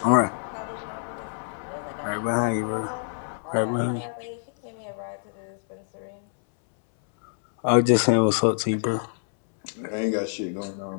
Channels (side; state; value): right; silent; 61 dB below the other